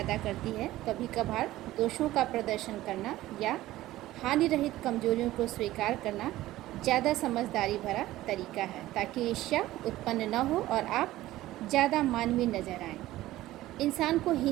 करती है। कभी कभार दोषों का प्रदर्शन करना या हानि रहित कमजोरियों को स्वीकार करना ज़्यादा समझदारी भरा तरीका है, ताकि ईर्ष्या उत्पन्न न हो और आप ज़्यादा मानवीय नजर आएं। इंसान को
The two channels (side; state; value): left; quieter; 15.9 dB